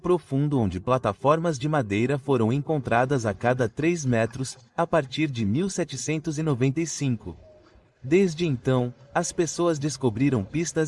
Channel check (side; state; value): both; identical; correlation 1.00